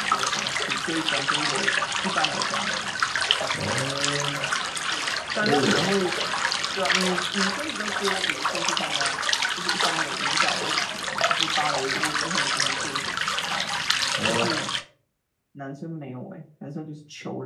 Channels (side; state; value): both; identical; correlation 1.00